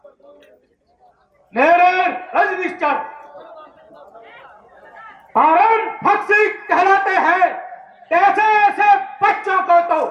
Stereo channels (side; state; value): both; identical; correlation 1.00